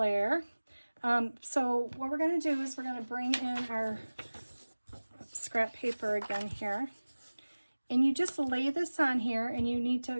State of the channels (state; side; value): inverted; both; correlation -1.00